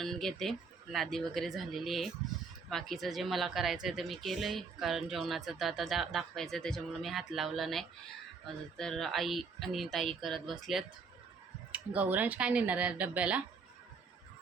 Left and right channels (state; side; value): quieter; left; 4.9 dB